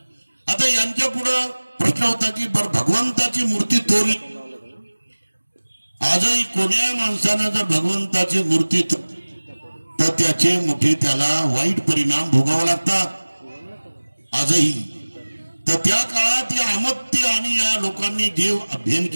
आता यांच्या पुढं प्रश्न होता की बर भगवंताची मूर्ती तोडली. आजही कोण्या माणसानं जर भगवंताची मूर्ती तर त्याचे मोठे त्याला वाईट परिणाम भोगावे लागतात आजही. तर त्या काळात या अमत्य आणि या लोकांनी जे अध्ययन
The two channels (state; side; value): inverted; both; correlation -1.00